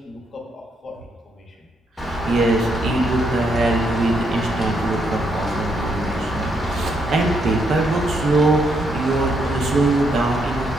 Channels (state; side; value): normal; both; correlation 0.76